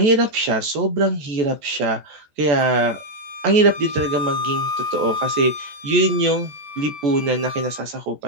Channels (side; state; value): left; late; 14 ms